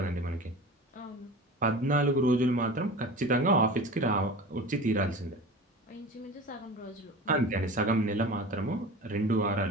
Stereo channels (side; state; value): both; normal; correlation 0.35